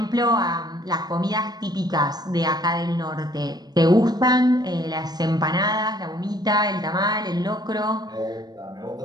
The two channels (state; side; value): late; left; 0.19 ms